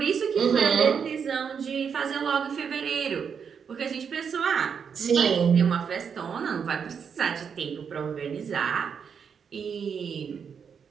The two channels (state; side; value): quieter; left; 6.8 dB